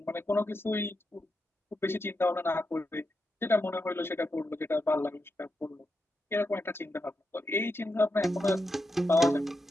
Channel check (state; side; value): normal; both; correlation 0.86